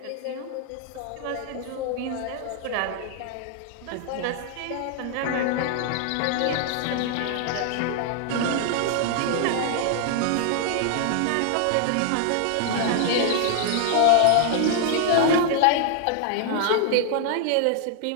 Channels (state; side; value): different; both; correlation 0.00